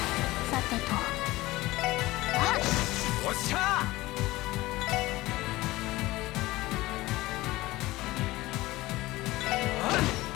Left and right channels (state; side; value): quieter; right; 18.9 dB